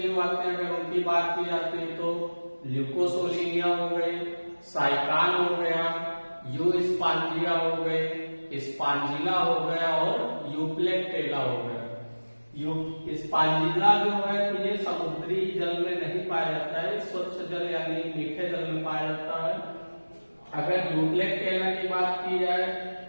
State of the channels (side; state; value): both; inverted; correlation -1.00